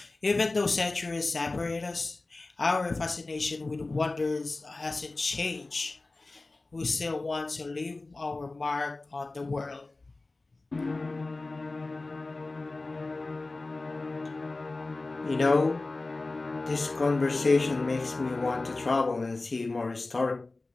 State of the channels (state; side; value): quieter; right; 3.3 dB